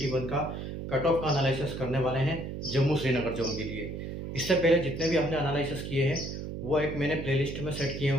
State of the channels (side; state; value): right; noise; hum, 7 dB below the sound